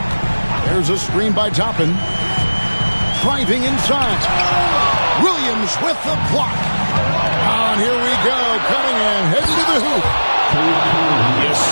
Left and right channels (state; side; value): inverted; both; correlation -1.00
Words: There's a screen by Toppin. Driving inside. Williams with the block. And here we go. Cunningham heading to the hoop. Yes,